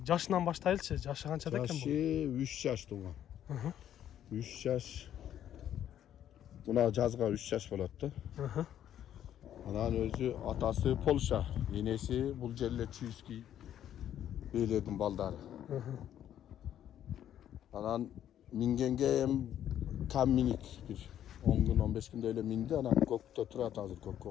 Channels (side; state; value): right; quieter; 10.7 dB